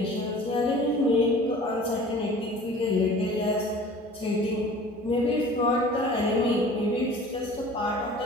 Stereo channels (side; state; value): both; normal; correlation 0.45